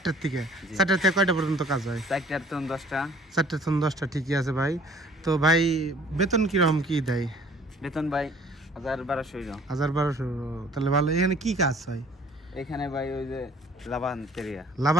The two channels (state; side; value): normal; both; correlation 0.54